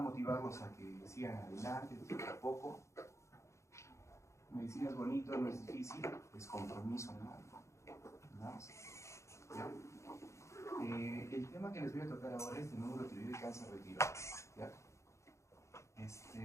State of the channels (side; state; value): right; late; 0.14 ms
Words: a que sigan adelante, poco a poco. Medicina es bonito, no es difícil, es compromiso, ¿no? Nada más. ¿Ya? El tema que les voy a tocar ahora es de nódulo tiroideo y cáncer de tiroides. ¿Ya?